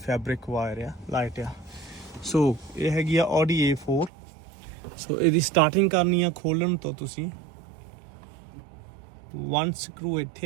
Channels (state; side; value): drops out; left; at 4.1 s